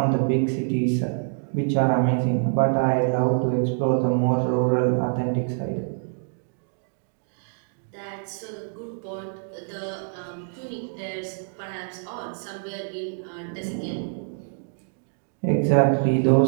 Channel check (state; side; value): silent; left; digital silence